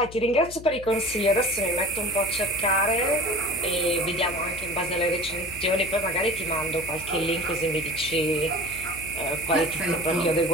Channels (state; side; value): noise; left; hum, 16 dB below the sound